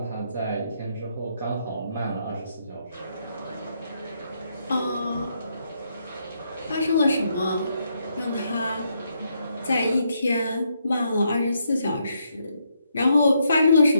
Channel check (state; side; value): inverted; both; correlation -0.77